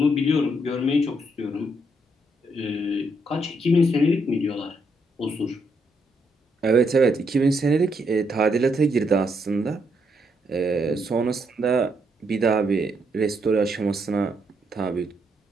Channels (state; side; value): normal; both; correlation 0.76